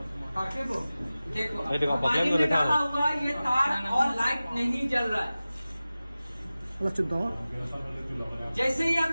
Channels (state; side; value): inverted; both; correlation -0.96